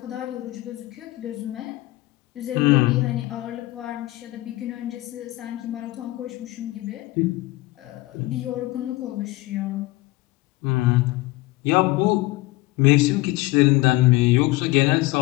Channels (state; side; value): quieter; right; 19.9 dB